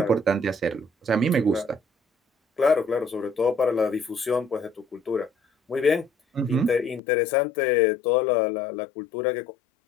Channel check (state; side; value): drops out; right; at 7.0 s